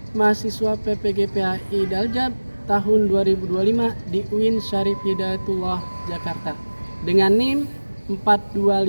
mahasiswa PPGPAI Daljab tahun 2025 di UIN Syarif Hidayatullah Jakarta dengan NIM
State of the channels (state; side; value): inverted; both; correlation -1.00